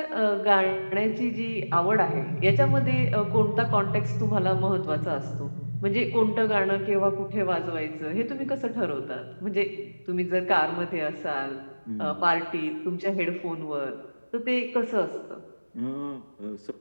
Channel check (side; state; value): both; inverted; correlation -1.00